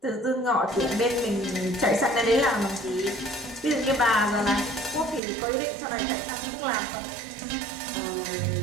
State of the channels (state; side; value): drops out; left; at 5.2 s